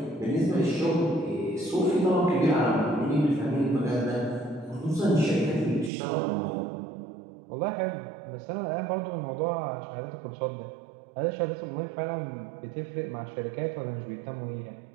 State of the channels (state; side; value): drops out; left; at 5.9 s